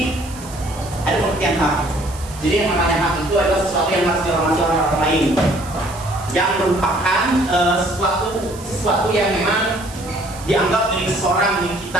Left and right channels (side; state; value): right; noise; hiss, 17 dB below the sound